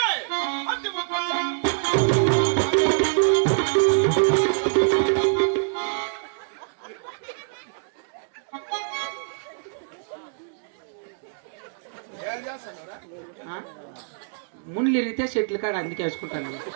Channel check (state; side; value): silent; left; digital silence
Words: ముళ్ళు ఇరిగితే చెట్లు కాడ అందుకే వేసుకుంటాను.